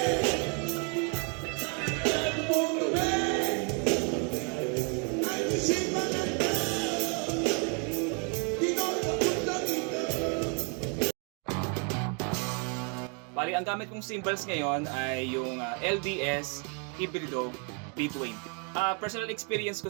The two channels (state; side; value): quieter; left; 36.7 dB